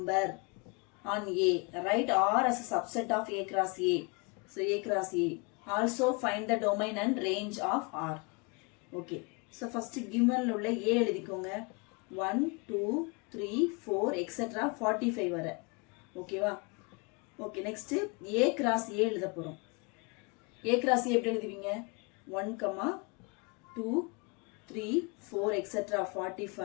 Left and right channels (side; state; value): right; quieter; 31.0 dB